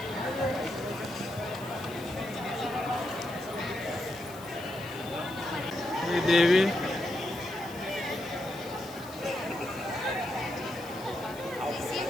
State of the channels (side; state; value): left; noise; hiss, 18 dB below the sound